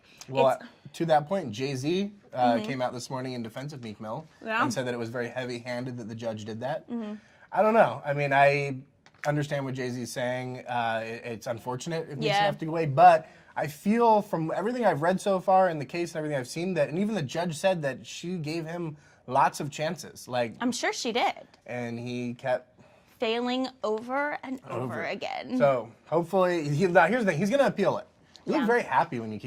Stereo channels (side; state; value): both; identical; correlation 1.00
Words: Well, to that point, Jay-Z came out this morning in defense of Meek Mill and said that it was very heavy-handed that the judge did that. I don't know. I mean, I understand what Jay-Z's saying. It's unfortunate it needs to have to go away, but... I feel from everything I've read so far in the case and everything I've seen and even the judge said that she gave him lots of chances. Like I'm sure she did. And he kept failing over and over again. So hopefully, now here's the thing, he's going to appeal it. You look very happy when you